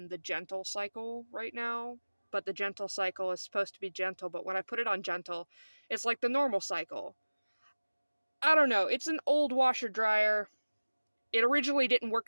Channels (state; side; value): inverted; both; correlation -1.00